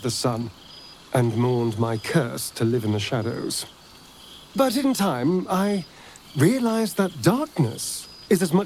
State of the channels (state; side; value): identical; both; correlation 1.00